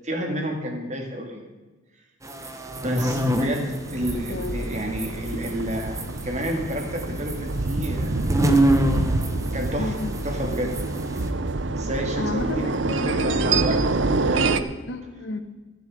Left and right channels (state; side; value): normal; both; correlation 0.55